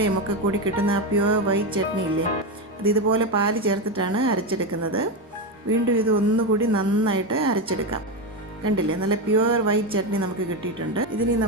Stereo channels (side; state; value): both; normal; correlation 0.13